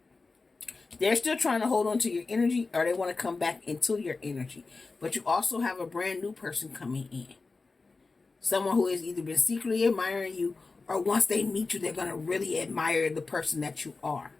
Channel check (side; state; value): right; quieter; 3.9 dB